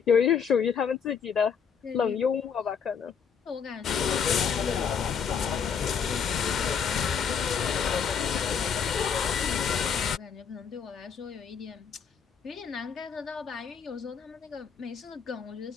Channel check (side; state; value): right; quieter; 6.7 dB